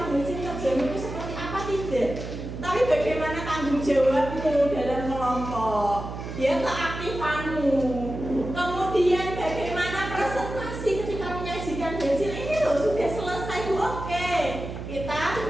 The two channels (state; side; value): noise; right; hum, 8 dB below the sound